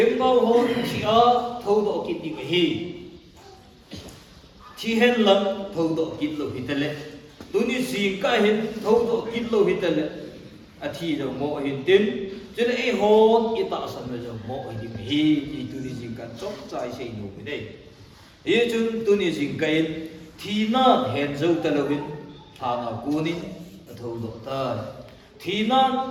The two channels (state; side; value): identical; both; correlation 1.00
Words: bao hồn thi ở thâu tổ cái đi cái thi hen lắm thâu tổ cái lô hít lên tôi đi dừng cái hen thâu tổ cái lô hít lên à thi rồi một hiện tiếng chứ là ít hồn ít tạo sản rồi một thì đi cái thì tôi đi dừng cái chốt trái xây nổ cái đấy ý chúng tôi đi dừng cái thì na hẹn dấu ta lâu hin thà na cuốn thâu độ ta thì na